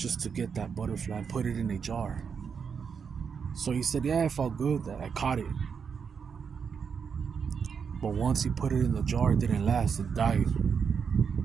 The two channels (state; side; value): quieter; left; 6.4 dB